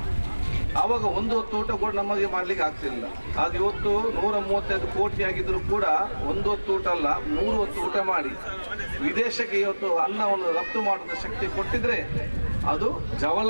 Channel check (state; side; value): inverted; both; correlation -1.00